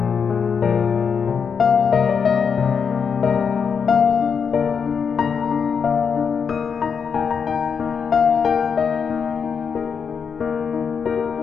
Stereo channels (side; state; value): right; quieter; 6.4 dB